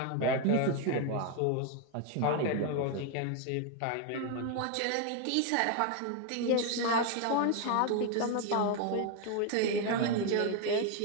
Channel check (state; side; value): different; both; correlation 0.01